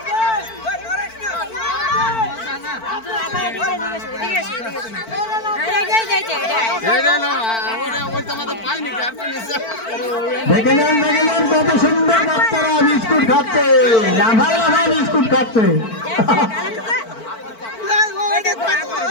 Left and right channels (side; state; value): right; late; 4.5 ms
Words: দেখে নেন কত সুন্দর বাচ্চারা বিস্কুট খাচ্ছে, লাফাই লাফাই বিস্কুট খাচ্ছে।